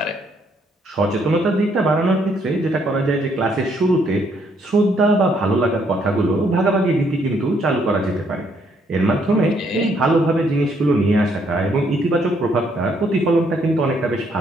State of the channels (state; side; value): normal; both; correlation 0.70